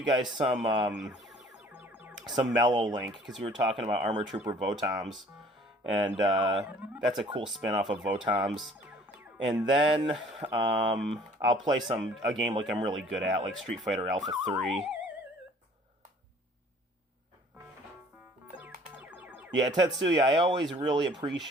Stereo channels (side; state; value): both; normal; correlation 0.53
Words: guys some Mellow Link, because we were talking about Armor Trooper Votoms, and that's a cool spin-off of Votoms. And then I'll play a game like I'm really good at, like Street Fighter Alpha 3. Yeah, Tetsuya, I always really